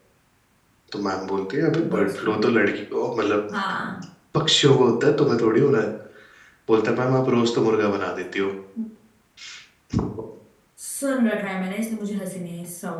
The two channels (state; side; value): identical; both; correlation 1.00